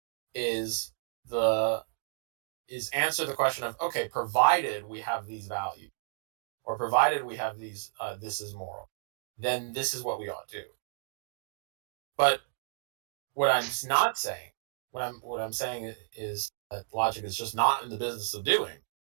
is answer the question of, okay, provided we have these values, or provided we have these, this is moral, then this is what we ought to do. But what I'm not saying, what I'm saying is that logic is just not in the business of doing,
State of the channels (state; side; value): silent; left; digital silence